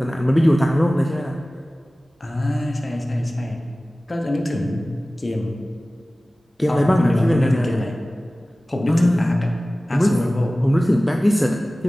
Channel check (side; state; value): both; normal; correlation 0.97